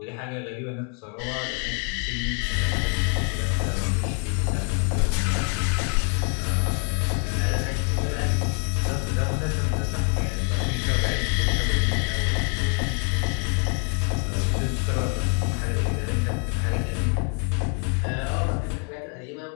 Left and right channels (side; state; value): right; quieter; 40.0 dB